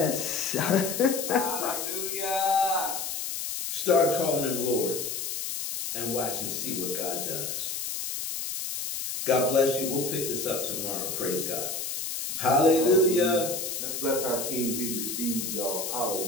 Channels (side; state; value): left; noise; hiss, 4 dB below the sound